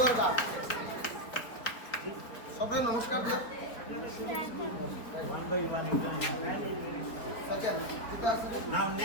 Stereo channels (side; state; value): right; late; 4.2 ms